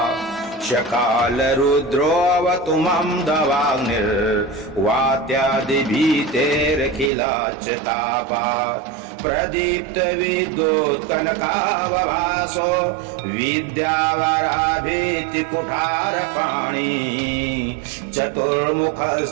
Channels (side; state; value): left; drops out; at 7.1 s